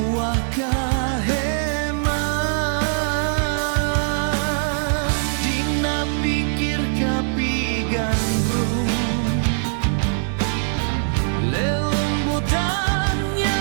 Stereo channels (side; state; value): left; silent; 64 dB below the other